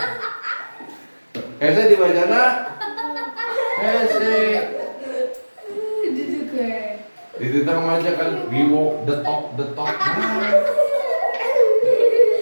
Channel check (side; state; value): both; inverted; correlation -1.00